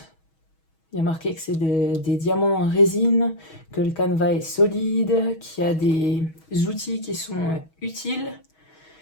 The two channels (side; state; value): right; late; 6.3 ms